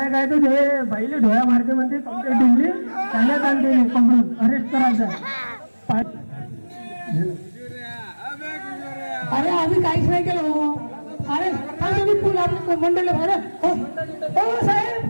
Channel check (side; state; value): both; inverted; correlation -1.00